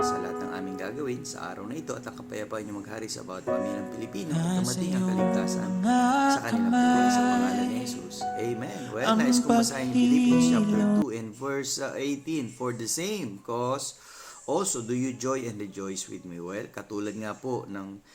lahat ng aming gagawin sa araw na ito at ang kapayapaan niyo maghari sa bawat pamilyang Pilipino at dumating ang kaligtasan sa kanilang buhay sa pangalan ni Jesus. Amen. Well, nais kong basahin yung Philippians chapter 2 and verse 18. For the same cause, also do you joy and rejoice with me. Well, katulad nga po ng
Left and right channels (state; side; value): identical; both; correlation 1.00